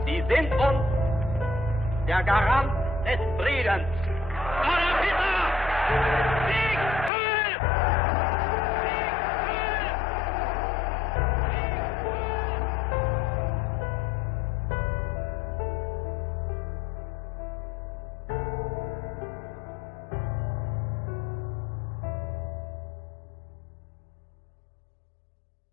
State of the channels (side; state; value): right; drops out; at 7.1 s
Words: Sie sind uns der Garant des Friedens. Adolf Hitler!